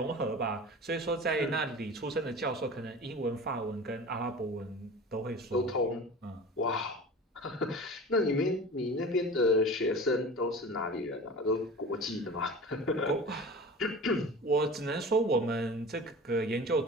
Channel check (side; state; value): both; normal; correlation 0.36